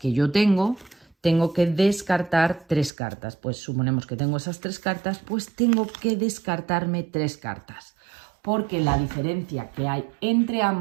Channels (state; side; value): drops out; left; at 2.9 s